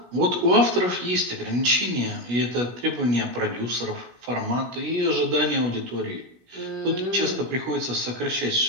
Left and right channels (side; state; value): left; late; 17 ms